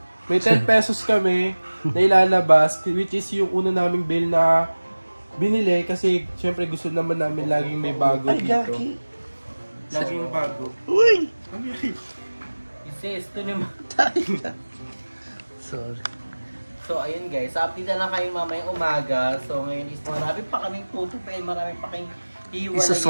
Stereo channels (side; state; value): both; inverted; correlation -1.00